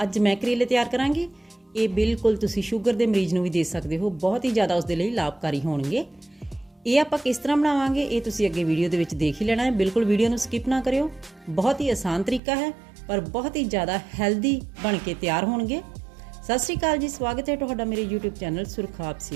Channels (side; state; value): left; drops out; at 12.4 s